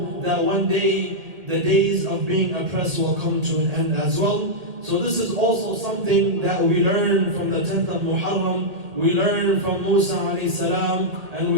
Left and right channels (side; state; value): left; late; 1.8 ms